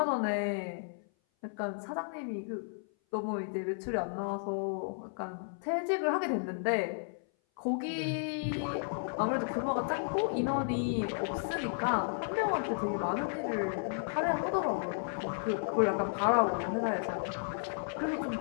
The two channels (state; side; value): silent; right; 56 dB below the other